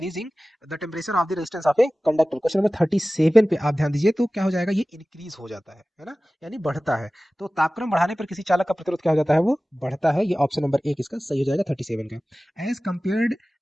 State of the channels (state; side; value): normal; both; correlation 0.97